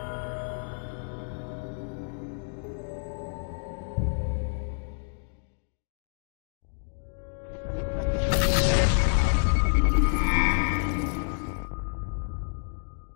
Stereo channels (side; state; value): right; silent; digital silence